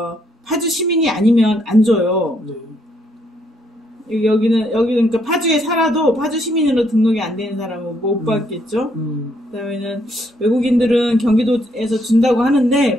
파주 시민이 아니면 안 줘요. 여기는 그러니까 파주에 살아도 파주 시민으로 등록이 안 되는 사람은 못 받겠죠. 그다음에는 외국인들은 경기도에서 준다고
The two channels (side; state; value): both; normal; correlation 0.72